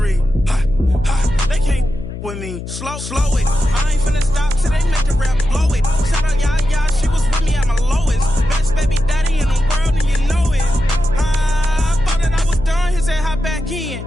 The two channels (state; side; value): noise; left; hum, 9 dB below the sound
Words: Ha, ha, they can't with me. Slow it. I ain't finna stop till they make the rap blow it. Shout out Yaya, she was with me at my lowest. Best baby daddy in the world and you know it. I thought that I was done, he said hop back in.